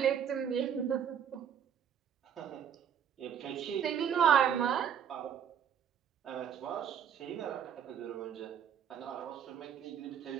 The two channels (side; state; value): left; quieter; 8.5 dB